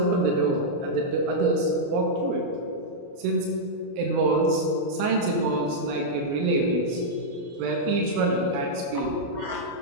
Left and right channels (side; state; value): left; late; 29 ms